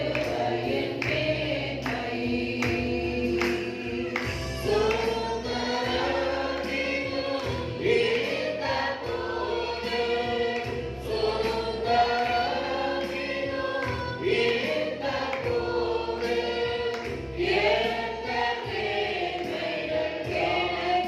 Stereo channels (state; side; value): identical; both; correlation 1.00